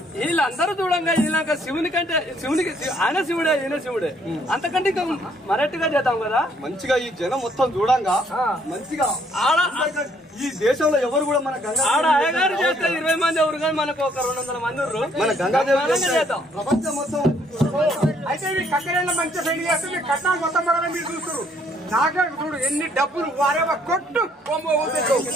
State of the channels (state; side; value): normal; both; correlation 0.66